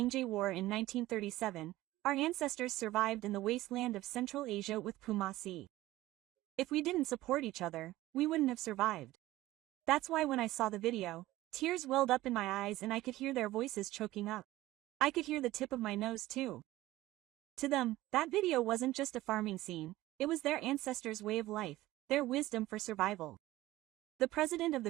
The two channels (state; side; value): quieter; left; 16.8 dB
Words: War in 1937, Our ancestors survived in the wasteland of Central Asia with Pumasi. If we didn't support each other, we wouldn't have survived. That's why when I saw the video, tears welled up in my eyes and I could hear their voices choking up. I could hear the tip of my nose too. To them, that video wasn't just a farming scene, it was their ancestors' way of life, their wisdom for survival. The president of